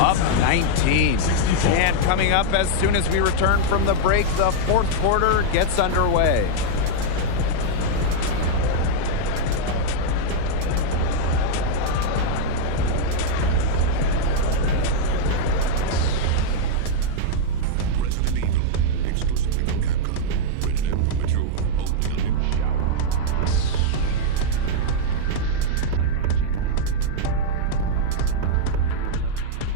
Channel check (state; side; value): different; both; correlation -0.01